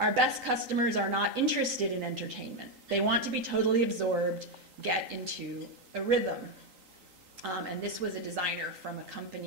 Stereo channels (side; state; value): left; late; 3.8 ms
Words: best customers are not interested in entertainment. They want to be totally absorbed, get into a rhythm. And this was a designer from a